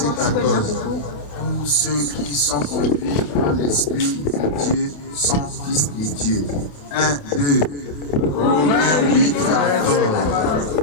14. Tous ceux qui sont conduits par l'Esprit de Dieu sont fils de Dieu. 1, 2. Romains 8, 14.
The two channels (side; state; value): right; late; 27 ms